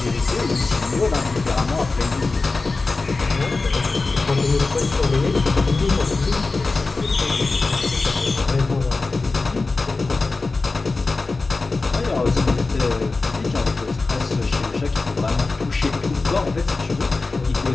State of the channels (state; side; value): quieter; right; 3.7 dB